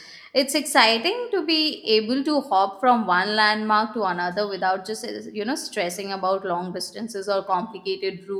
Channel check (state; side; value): identical; both; correlation 1.00